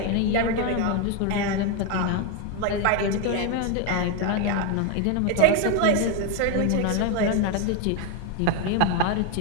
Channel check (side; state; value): both; different; correlation 0.01